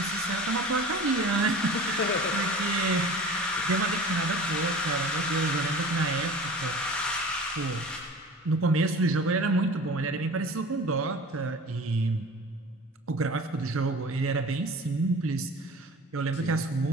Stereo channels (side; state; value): both; normal; correlation 0.39